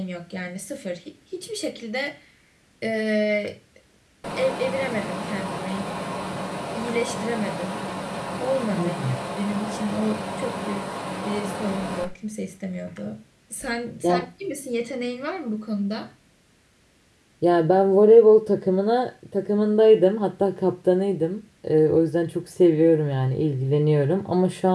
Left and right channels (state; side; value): identical; both; correlation 1.00